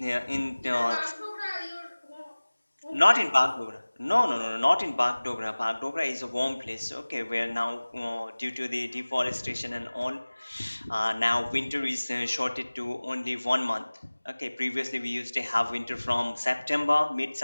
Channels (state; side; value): inverted; both; correlation -1.00